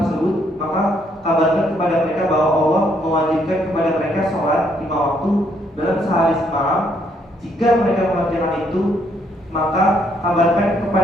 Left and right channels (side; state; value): both; normal; correlation 0.71